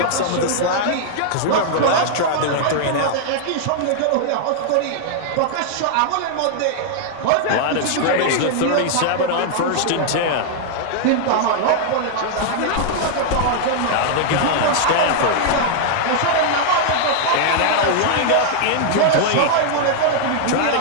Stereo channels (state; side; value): different; both; correlation -0.01